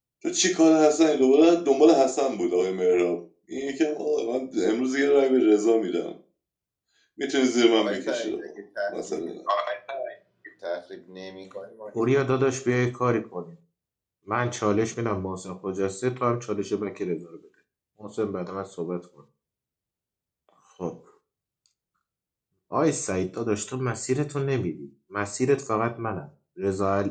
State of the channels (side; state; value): both; identical; correlation 1.00